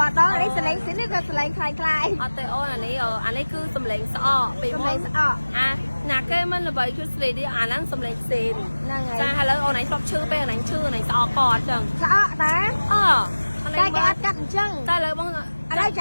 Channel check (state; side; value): inverted; both; correlation -1.00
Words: đó lấy sờ lên xín nó sờ lên khai khai ở tây ôn anh ấy cứ sầm lên sọ bị sờ mông lên sọ nà cái mình là vậy chút gì đi nó sầm lên xìn ra hay là ôn này sọc chữ bây giờ này chữ này sọ cọt chừng sọ tá cái ắt cắt chăng ta lời bông ở đây